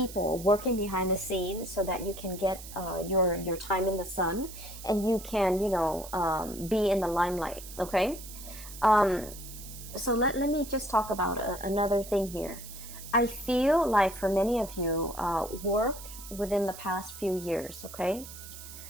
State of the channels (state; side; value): noise; right; hiss, 14 dB below the sound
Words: working behind the scenes, so that you can get your time in the sun, and you can, you know, be in the limelight. Okay, so let me just talk about another thing here. I feel like for many of you, work within the past few years, okay,